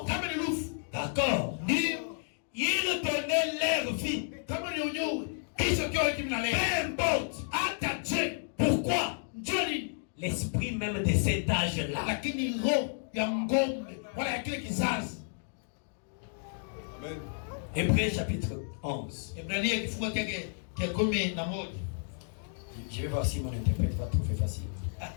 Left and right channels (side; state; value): right; silent; digital silence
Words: d'accord, ils donnaient leur vie. Peu importe. Pourquoi? L'esprit même de cet âge-là. Hébreux chapitre 11. Ebrania kifungo chake cha 11. Je vais voir si mon interprète va trouver facile.